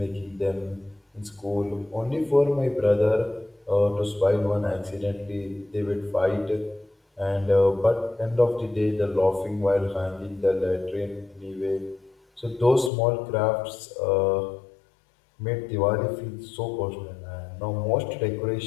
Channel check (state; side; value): drops out; right; at 12.9 s